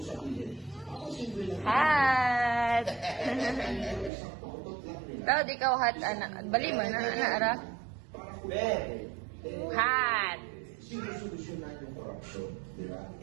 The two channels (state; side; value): drops out; left; at 4.1 s